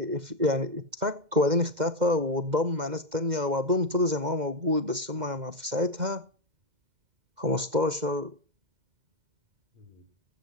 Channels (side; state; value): left; late; 2.1 ms